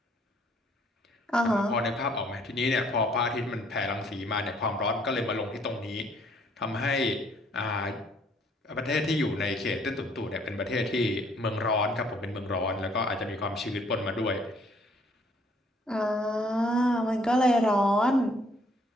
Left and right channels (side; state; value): both; normal; correlation 0.63